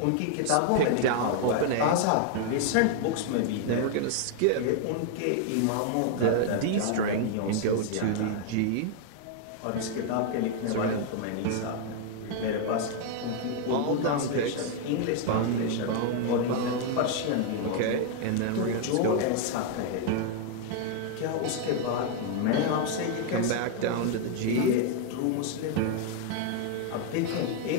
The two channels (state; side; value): different; both; correlation 0.00